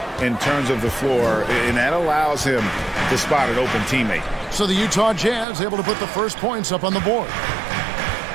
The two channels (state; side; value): drops out; left; at 5.5 s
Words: in terms of the floor, and that allows him to spot an open teammate. So the Utah Jazz able to put the first points up on the board.